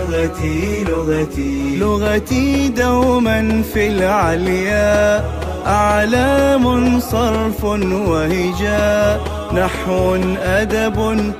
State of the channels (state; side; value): identical; both; correlation 1.00